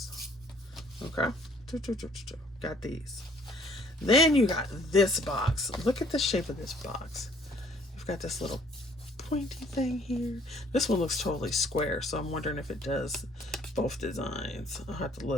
Okay. Got these. Then you got this box. Look at the shape of this box. You've got this little pointy thing here. This one looks totally square, so I'm wondering if it does both designs. I'll have to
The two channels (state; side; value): normal; both; correlation 0.60